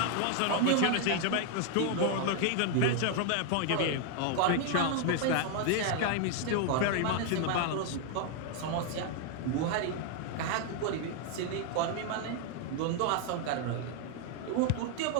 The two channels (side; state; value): both; different; correlation 0.00